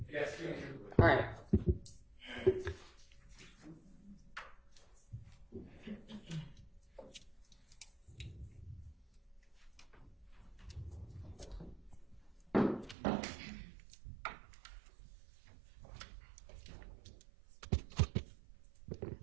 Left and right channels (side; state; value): left; drops out; at 13.0 s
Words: Yes, All right.